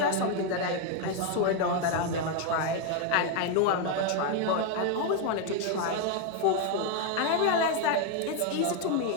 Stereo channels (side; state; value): both; different; correlation 0.01